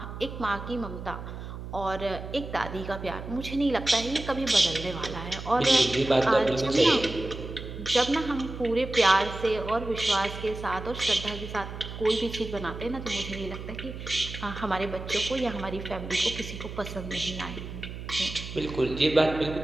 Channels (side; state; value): right; noise; hum, 9 dB below the sound